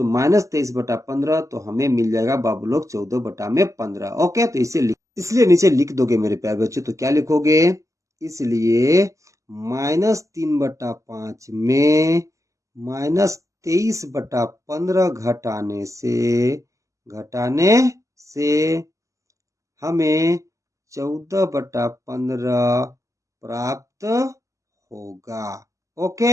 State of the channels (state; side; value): late; left; 0.16 ms